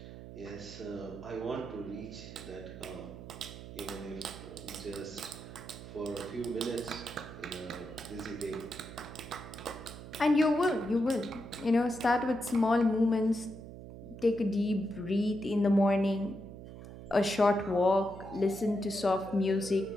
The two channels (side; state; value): right; noise; hum, 13 dB below the sound